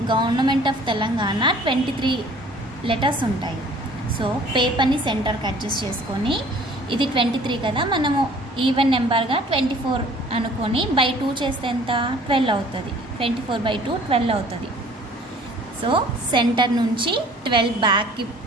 గవర్నమెంట్ ఆఫ్ తెలంగాణ 23 లెటర్స్ ఉంటాయి. సో పేపర్ని సెంటర్కి అడ్జస్ట్ చేసుకొని ఇది 23 కదా, మనము ఈవెన్ నెంబర్గా 24 అనుకొని బై 2 చేస్తే ఎంత 12 అవుతుంది. 24/2 12 అవుతుంది. సో సెంటర్ నుంచి 12 బ్యాక్కి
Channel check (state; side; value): normal; both; correlation 0.52